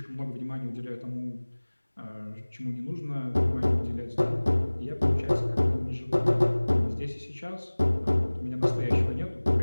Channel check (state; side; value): inverted; both; correlation -1.00